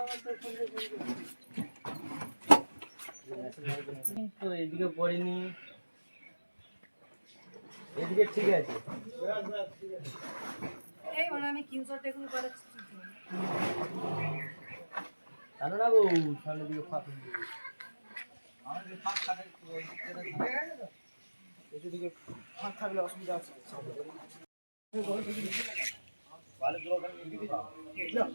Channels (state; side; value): inverted; both; correlation -1.00